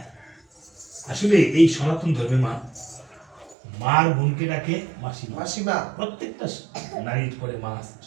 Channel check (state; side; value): drops out; left; at 3.6 s